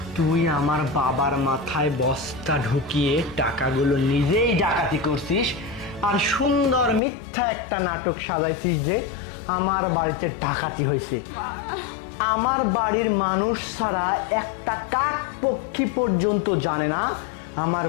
তুই আমার বাবার মাথায় বস্তা ঢুকিয়ে টাকাগুলো নিজেই ডাকাতি করছিস, আর সুন্দর মিথ্যা একটা নাটক সাজাইছিস যে আমার বাড়িতে ডাকাতি হয়েছে। আমার বাড়ির মানুষ ছাড়া একটা কাক পক্ষী পর্যন্ত জানে না আমার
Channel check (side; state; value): right; drops out; at 7.0 s